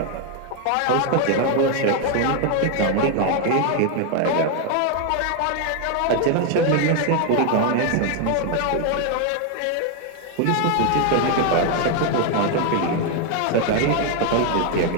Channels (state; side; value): different; both; correlation 0.01